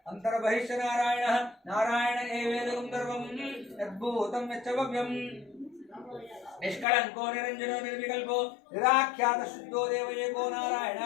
अन्तर्बहिश्च नारायणः नारायण एवेदं सर्वं यद्भूतं यच्च भव्यम् निष्कलंको निरंजनो निर्विकल्पो निराख्यात शुद्धो देव एको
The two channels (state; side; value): drops out; right; at 6.9 s